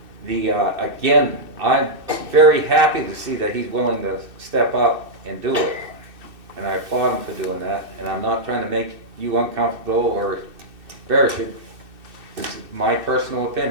Again, I'm very happy to see that he's willing to step up and do it. And I applaud him for doing that, and I'm not trying to make you uncomfortable or embarrass you. It's my personal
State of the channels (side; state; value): left; late; 2.6 ms